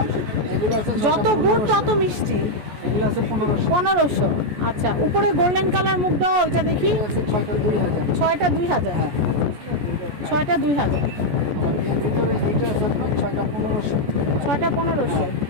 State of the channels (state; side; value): late; left; 14 ms